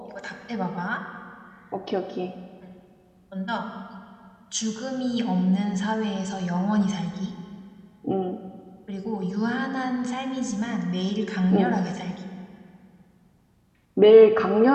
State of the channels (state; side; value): identical; both; correlation 1.00